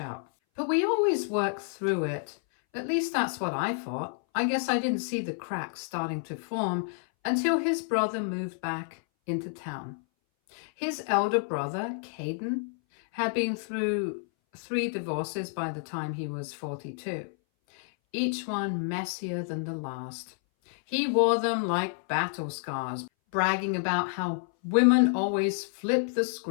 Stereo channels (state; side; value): silent; right; 58 dB below the other